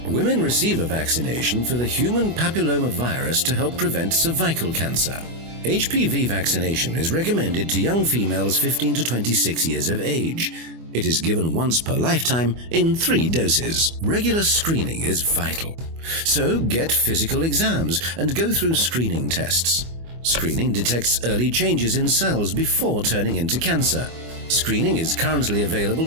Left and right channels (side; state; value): left; late; 24 ms